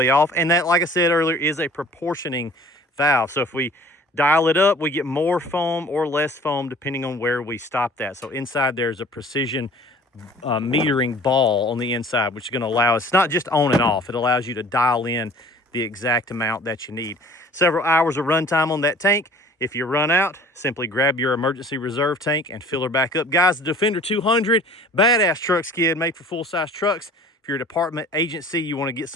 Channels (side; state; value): both; normal; correlation 0.48